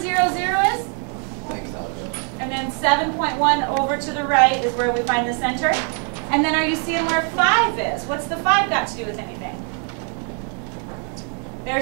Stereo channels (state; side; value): quieter; left; 38.4 dB